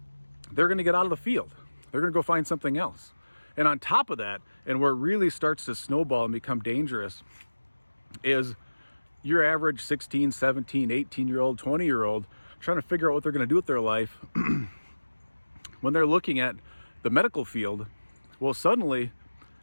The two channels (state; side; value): inverted; both; correlation -1.00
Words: They're going to get out of the field. They're going to go find something else. And on top of that, and where it really starts to snowball and become dangerous, is your average 16, 17, 18-year-old, 20-year-old trying to figure out what they're going to do with their life. When they're looking at the medical field, well, suddenly